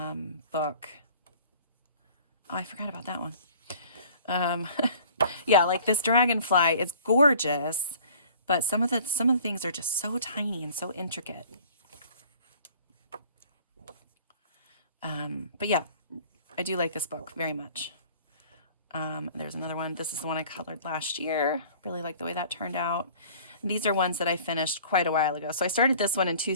Oh, I forgot about that one. Yeah, like this dragonfly, it's gorgeous, but some of the things are just so tiny and so intricate. But yeah, I do like this book very much. There's another one. This is the one I colored last year. Really like the way that turned out. And these are ones that I finished quite a while ago. So I started this one in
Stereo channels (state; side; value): inverted; both; correlation -0.49